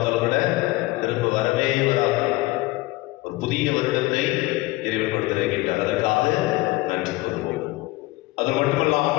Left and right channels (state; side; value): quieter; right; 20.3 dB